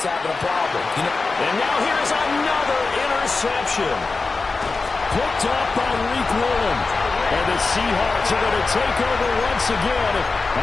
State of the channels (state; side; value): quieter; right; 4.0 dB